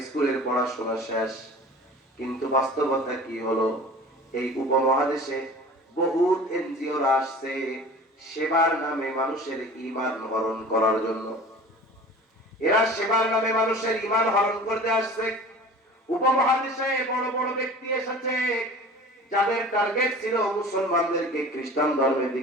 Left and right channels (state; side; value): normal; both; correlation 0.41